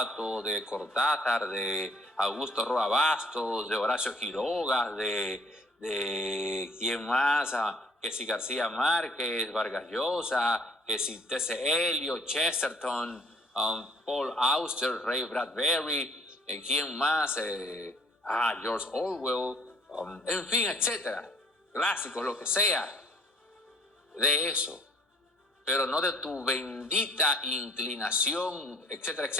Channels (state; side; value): normal; both; correlation 0.58